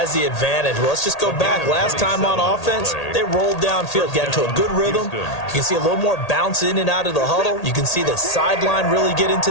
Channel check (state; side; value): late; right; 1.8 ms